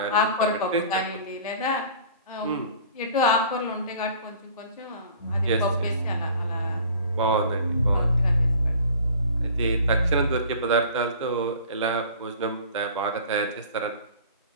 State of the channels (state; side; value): inverted; both; correlation -0.45